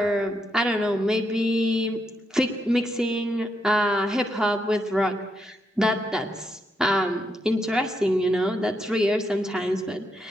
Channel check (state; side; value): normal; both; correlation 0.80